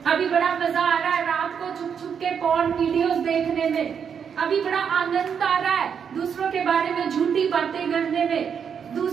अभी बड़ा मजा आ रहा है रात को छुप छुप के पॉर्न वीडियोस देखने में, अभी बड़ा आनंद आ रहा है दूसरों के बारे में झूठी बातें करने में,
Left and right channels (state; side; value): quieter; left; 7.3 dB